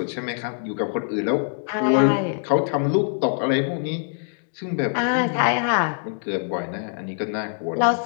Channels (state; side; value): silent; right; 63 dB below the other